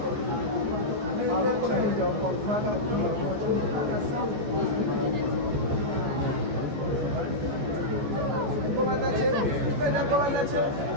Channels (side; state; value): left; late; 14 ms